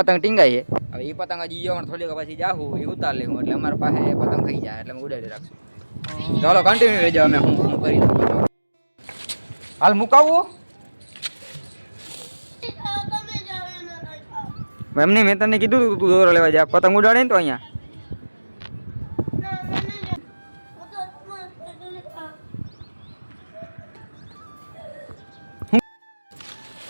ટીંગાય છે. હવે એ પતંગ હજી જવાનું થોડીક પછી જાહું એ ઉતાર લેવું એટલે અમારા પાસે પતંગ થઈ જાય એટલે અમે ઉડાડી રાખશું. ચાલો કન્ટિન્યુ રહેજો. અમે હું કરી દઉં. હાલ મુકાવવું એમને મેં તને કીધું તું દોરો લેવા જા પતંગ ઉડાડે ને તો અહીંયા.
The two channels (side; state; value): both; inverted; correlation -1.00